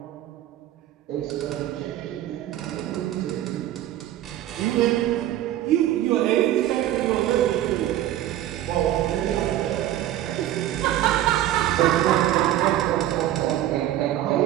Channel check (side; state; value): left; quieter; 13.2 dB